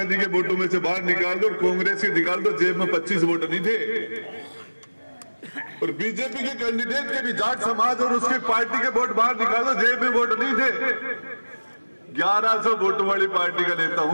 के वोटों में से बाहर निकाल दो और कांग्रेस के निकाल दो, जेब में 25 वोट नहीं थे। और बीजेपी के कैंडिडेट के भी जाट समाज और उसकी पार्टी के वोट बाहर निकाल दो, जेब में वोट नहीं थे। 1100 वोट वाली पार्टी का नेता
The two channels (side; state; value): both; inverted; correlation -1.00